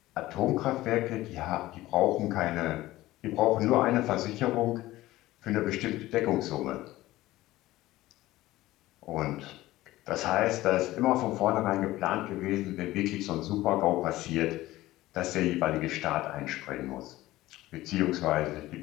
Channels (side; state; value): right; quieter; 16.9 dB